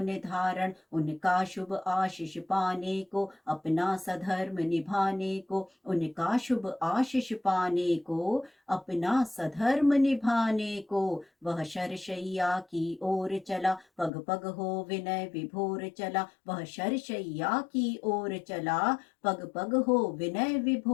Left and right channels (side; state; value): right; drops out; at 14.1 s